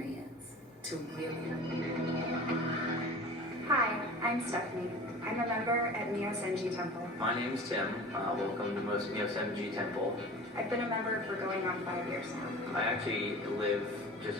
to really. Hi, I'm Stephanie. I'm a member at Myosenji Temple. My name's Tim. Welcome to Myosenji Temple. I've been a member for going on 5 years now. I actually live just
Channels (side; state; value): both; normal; correlation 0.38